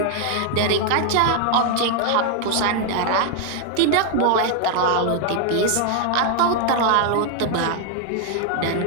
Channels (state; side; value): different; both; correlation 0.00